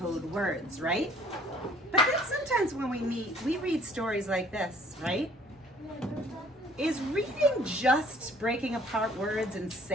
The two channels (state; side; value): normal; both; correlation 0.56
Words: words, right? But then sometimes when we meet, we read stories like this, right? Is reading just breaking apart words and